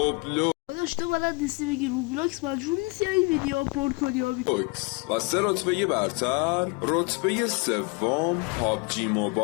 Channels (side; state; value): right; quieter; 28.0 dB